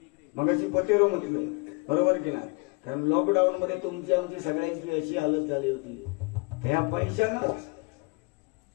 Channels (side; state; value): right; quieter; 30.6 dB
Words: मग अशी पटेरो म्हटलं बरोबर की नाही. कारण लॉकडाऊन मध्ये तुमची आमची सगळ्यांची अशी हालत झाली होती ह्या पैशानंच.